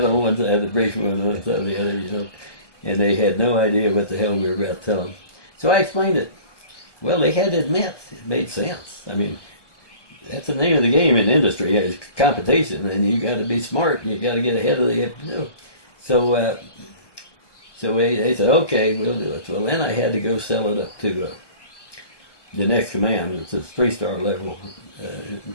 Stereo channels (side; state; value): right; late; 1.1 ms